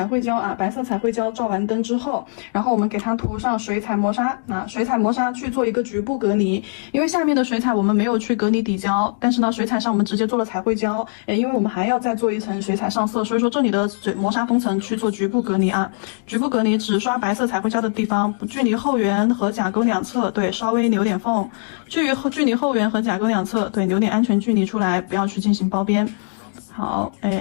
绘胶啊，白色彩绘胶照完灯之后，然后我们给它涂上水彩磨砂啊，水彩磨砂去做一个局部隔离，因为下面的水彩我们没有去隔离底胶，但是呢，水彩上我们直接做了彩绘胶，因为我们还要再做一层水彩上色，所以说这里的磨砂封层去做局部隔离啊，局部隔离只刷白色彩绘胶的地方，距离后缘和甲沟两侧，对，稍微留点缝，距离后缘和甲沟两侧，对，留点安全距离出来，不要去进行包边。好，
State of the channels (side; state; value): right; silent; 65 dB below the other